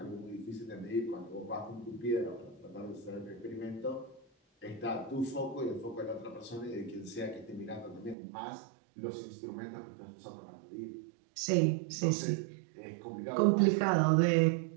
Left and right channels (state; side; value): drops out; left; at 8.2 s